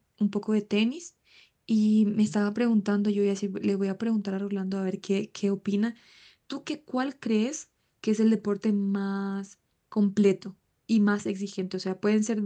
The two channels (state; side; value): identical; both; correlation 1.00